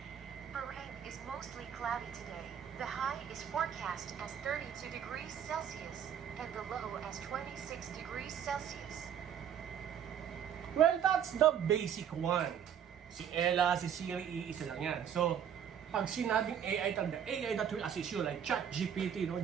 Bahrain is mostly cloudy today. The high is forecast as 32 degrees Celsius and the low as 26 degrees Celsius. Well, that's the basic one. Si Ella, si Siri, iisa lang yan. So, pag sinabing AI, the AI that will assist you, like ChatGPT, no,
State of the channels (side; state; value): left; quieter; 8.8 dB